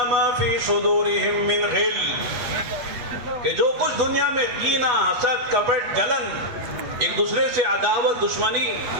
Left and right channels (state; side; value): late; left; 8.3 ms